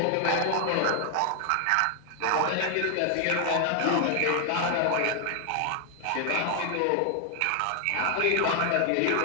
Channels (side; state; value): both; different; correlation 0.00